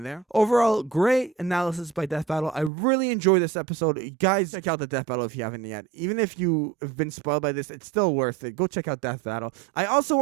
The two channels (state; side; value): drops out; left; at 2.7 s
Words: there. Overall, great analysis by Death Battle. I really enjoyed this episode. You guys, check out the Death Battle if you haven't yet. Even if you have been spoiled by this, it's still worth it. Go check out Death Battle. I also